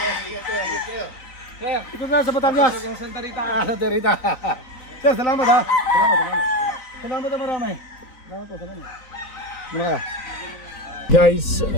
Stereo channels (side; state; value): right; late; 3.9 ms